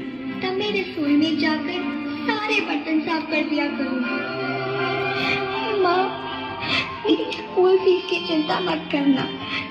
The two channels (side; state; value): both; identical; correlation 1.00